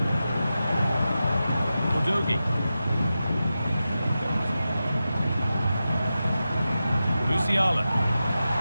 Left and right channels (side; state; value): both; inverted; correlation -0.92